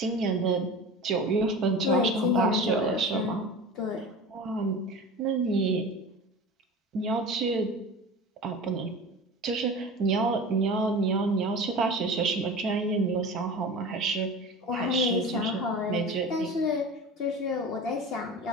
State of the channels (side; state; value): both; normal; correlation 0.33